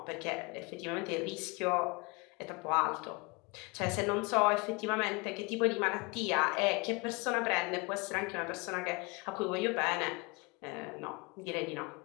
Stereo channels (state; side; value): quieter; right; 27.8 dB